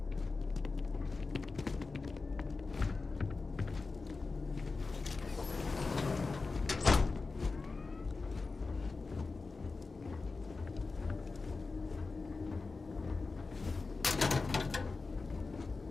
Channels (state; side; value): quieter; right; 4.0 dB